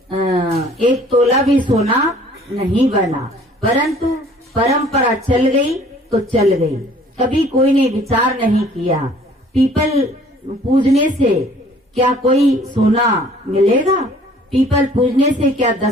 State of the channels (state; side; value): normal; both; correlation 0.54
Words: एक तोला भी सोना नहीं बना, परंतु परंपरा चल गई तो चल गई। कभी कोई ने विचार नहीं किया पीपल पूजने से क्या कोई सोना मिलेगा, पीपल पूजने से क्या